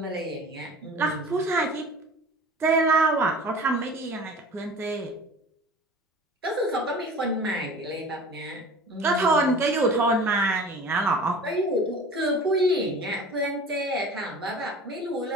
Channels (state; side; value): normal; both; correlation 0.41